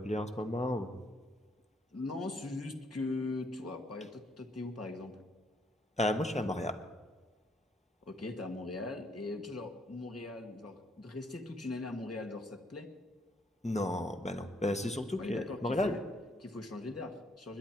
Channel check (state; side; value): normal; both; correlation 0.70